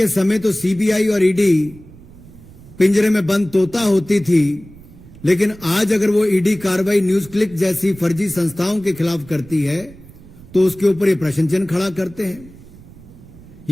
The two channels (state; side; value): noise; right; rumble, 21 dB below the sound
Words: समय तो सीबीआई और ईडी पिंजरे में बंद तोता होती थी, लेकिन आज अगर वो ईडी कार्रवाई न्यूज क्लिक जैसी फर्जी संस्थाओं के खिलाफ करती है तो उसके ऊपर ये प्रश्न चिन्ह खड़ा करते हैं।